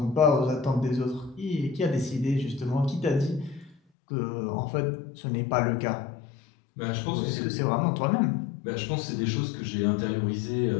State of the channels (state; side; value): drops out; right; at 3.8 s